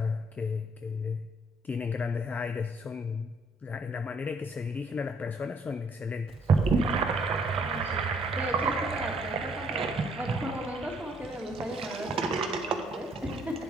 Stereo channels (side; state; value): both; normal; correlation 0.66